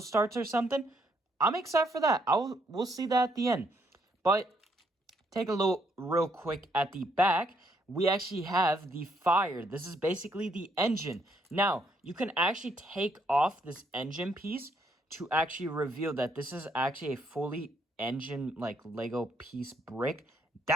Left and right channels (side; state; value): both; normal; correlation 0.71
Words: or something. I'm excited for that. We'll see that at the end. But take a look real quick at the back. We actually have the fire. This is basically the engine. Now, you can actually take off this engine piece to actually reveal that this is actually a fully engine, like, Lego piece brick.